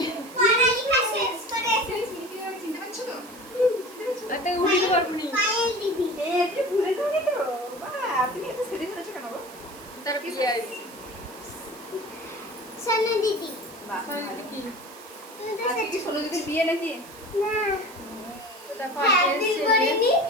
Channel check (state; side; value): noise; right; hiss, 19 dB below the sound